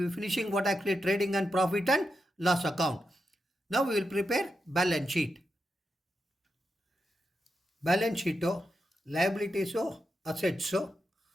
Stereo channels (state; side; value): normal; both; correlation 0.87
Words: be finishing what actually trading and profit and loss account. Now we will prepare balance sheet. Balance sheet, liabilities, assets,